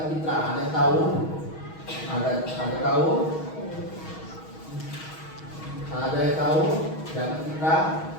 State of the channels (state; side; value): late; right; 6.3 ms